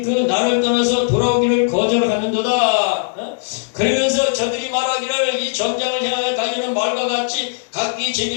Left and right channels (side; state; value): right; silent; digital silence